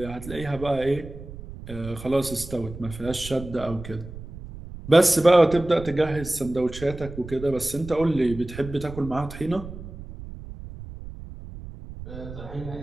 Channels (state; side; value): noise; right; rumble, 13 dB below the sound